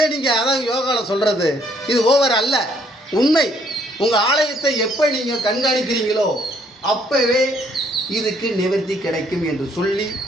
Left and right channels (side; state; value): both; normal; correlation 0.66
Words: நீங்கள் அதான் யோகாவில் சொல்கிறது இது ஓவர் அல்ல, உண்மை. உங்கள் ஆலயத்தை எப்போ நீங்கள் கண்காணிக்கிறீங்களோ அப்போவே இதுக்கு நிவர்த்தி கிடைக்கும் என்று சொல்லி